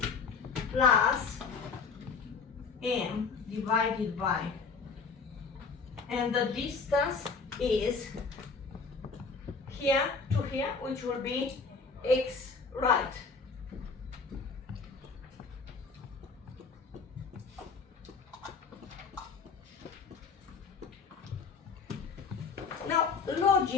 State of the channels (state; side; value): quieter; right; 5.0 dB